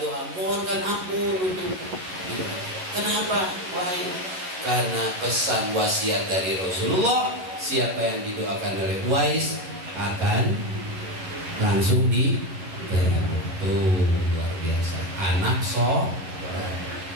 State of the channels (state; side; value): late; left; 11 ms